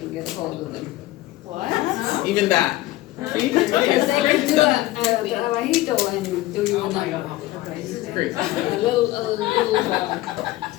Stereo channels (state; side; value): quieter; right; 17.1 dB